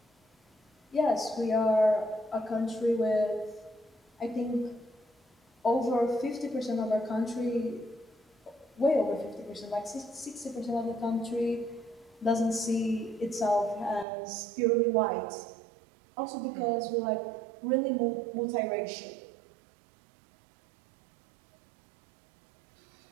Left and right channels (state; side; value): drops out; left; at 14.1 s